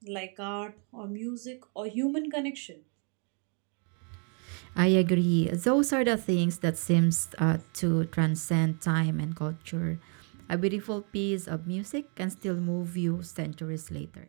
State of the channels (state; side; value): quieter; left; 39.3 dB